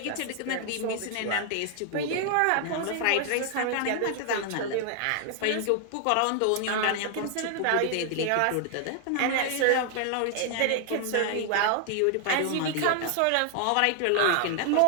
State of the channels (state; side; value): different; both; correlation 0.00